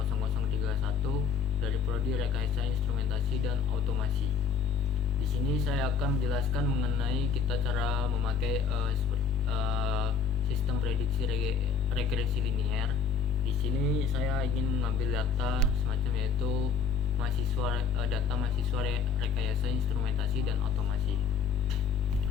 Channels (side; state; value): right; quieter; 6.1 dB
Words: dari Prodi Rekayasa Instrumentasi dan Otomasi. Di sini saya akan menjelaskan mengenai kita cara memakai sistem prediksi regresi linear. Di sini saya ingin mengambil data semacam yaitu data mahasiswa rekayasa instrumentasi dan otomasi.